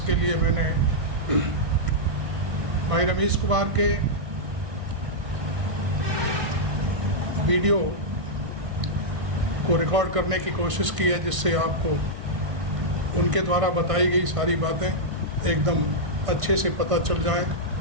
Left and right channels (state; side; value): late; left; 1.6 ms